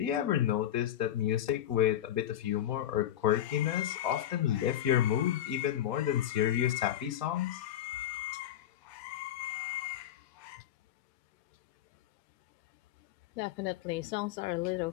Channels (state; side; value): quieter; right; 11.6 dB